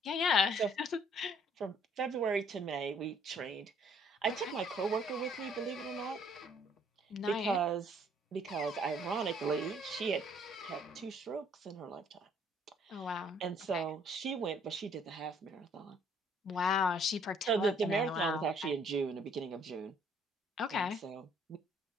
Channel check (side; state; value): both; normal; correlation 0.62